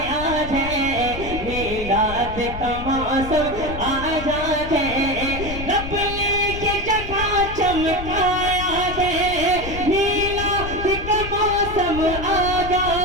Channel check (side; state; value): left; noise; rumble, 9 dB below the sound